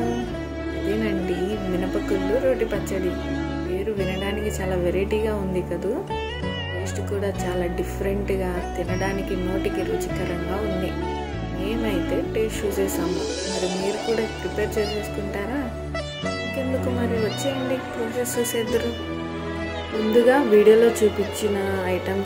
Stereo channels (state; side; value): identical; both; correlation 1.00